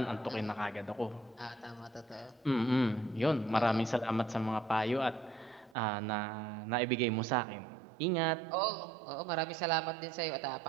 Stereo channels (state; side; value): drops out; left; at 5.8 s